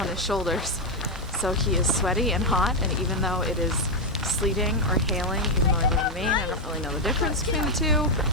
his shoulders. So he is sweaty and hot, and even though it is sleeting or hailing, even though I live in Maine, I don't really know the difference between the two.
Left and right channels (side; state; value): both; normal; correlation 0.03